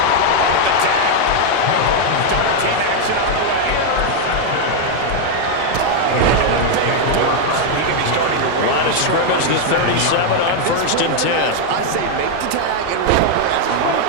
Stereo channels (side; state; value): both; different; correlation 0.01